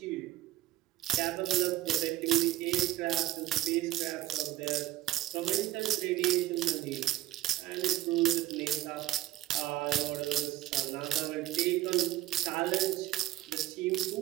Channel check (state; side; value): quieter; left; 15.4 dB